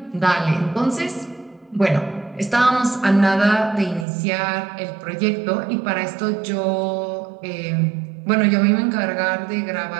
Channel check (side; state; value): left; drops out; at 4.0 s